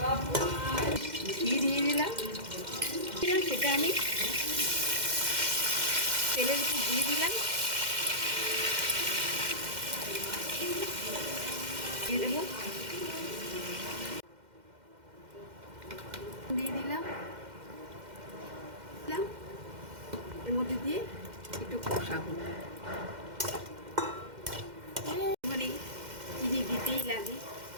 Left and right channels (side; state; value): left; late; 2.1 ms